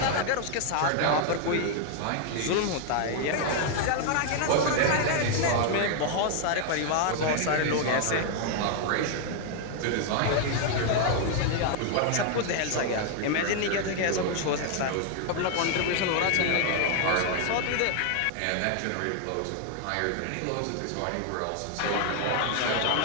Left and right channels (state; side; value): different; both; correlation 0.00